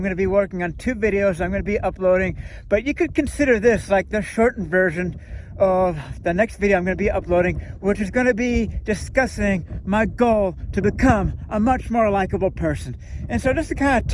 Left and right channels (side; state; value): both; identical; correlation 1.00